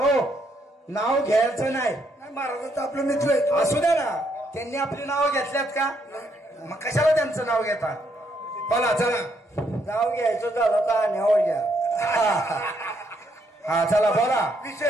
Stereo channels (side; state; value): both; normal; correlation 0.74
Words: नाव घ्यायचं नाही महाराजांचं आपलं मित्र आहे असू द्या ना त्यांनी आपली नावं घेतल्यात का मग कशाला त्यांचं नाव घेता बोला चला नाव घ्यायचं झालं तर न्यावं घ्या हा चला बोला